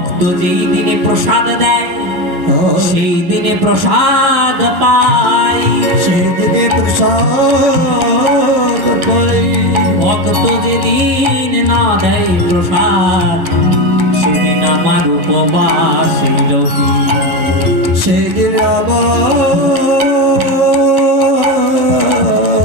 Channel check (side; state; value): left; late; 11 ms